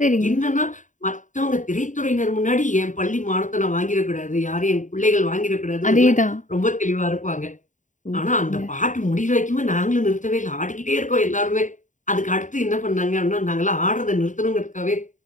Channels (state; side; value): late; right; 0.36 ms